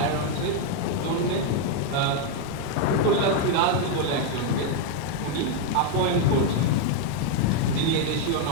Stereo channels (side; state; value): both; different; correlation 0.01